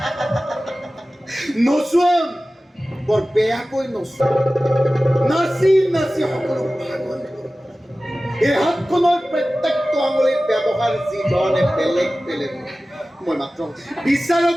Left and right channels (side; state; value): both; normal; correlation 0.96